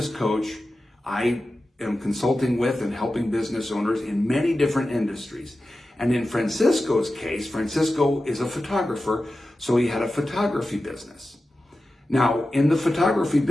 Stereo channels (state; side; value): normal; both; correlation 0.93